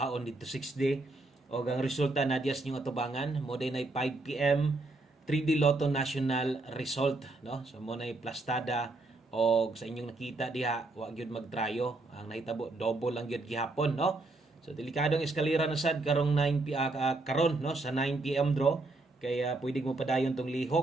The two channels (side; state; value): left; quieter; 3.1 dB